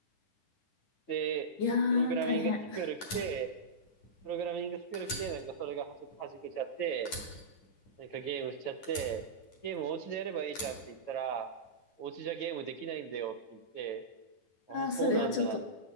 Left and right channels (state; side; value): late; right; 9.9 ms